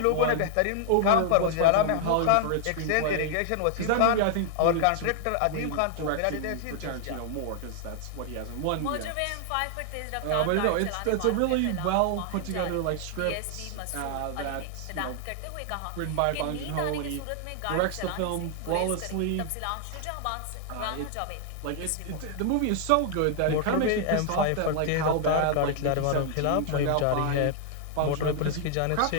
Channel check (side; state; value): both; different; correlation 0.00